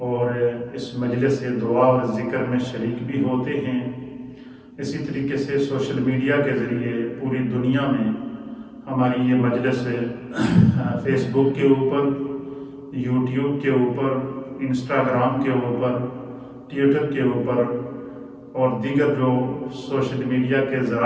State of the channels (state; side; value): identical; both; correlation 1.00